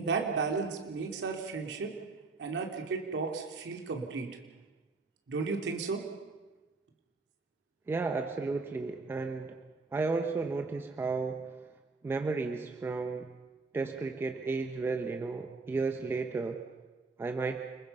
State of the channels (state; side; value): quieter; left; 3.9 dB